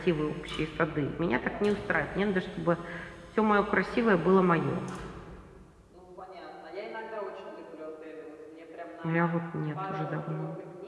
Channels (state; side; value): identical; both; correlation 1.00